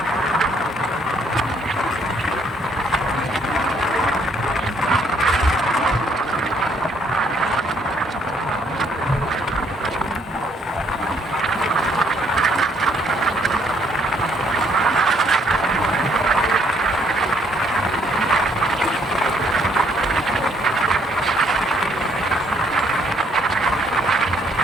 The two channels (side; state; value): both; normal; correlation 0.67